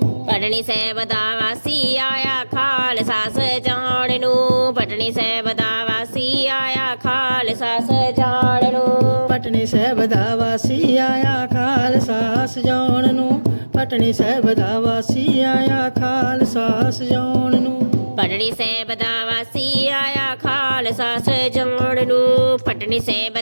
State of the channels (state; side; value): inverted; both; correlation -1.00